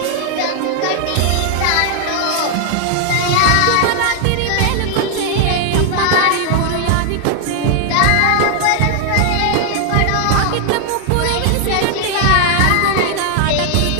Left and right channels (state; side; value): different; both; correlation 0.00